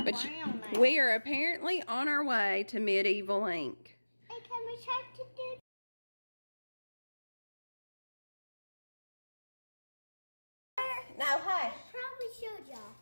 of brown now. We are apparently on our way to medieval ink. Hey, can we try to do? No, hush. Probably showed y'all.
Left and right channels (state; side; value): inverted; both; correlation -1.00